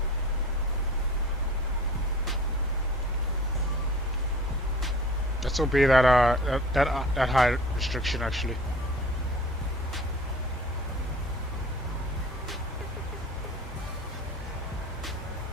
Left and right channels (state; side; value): normal; both; correlation 0.44